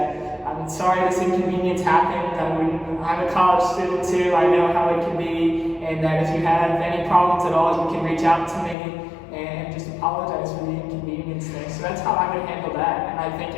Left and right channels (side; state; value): right; drops out; at 8.8 s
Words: I'm sorry this inconvenience happened, I'm a college student too, I know how it can be, and that if you have any problems at all, you can reach out to me and just apologize for the inconvenience there. So that's how I would handle that, and I think